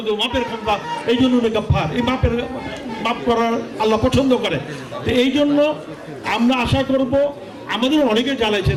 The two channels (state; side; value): identical; both; correlation 1.00